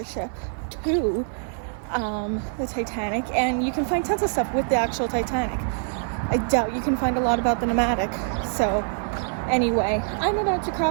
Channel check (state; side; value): silent; left; 58 dB below the other